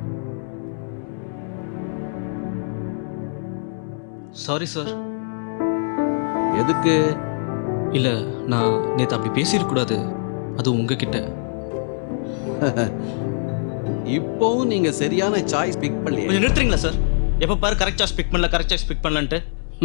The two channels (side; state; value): right; silent; 64 dB below the other